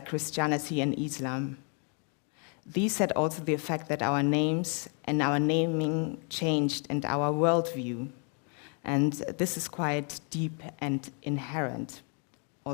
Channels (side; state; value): right; quieter; 39.2 dB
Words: Christianity and Islam. These had also the effect that our names and our naming changed, and our worldview. And this is quite deep and inherent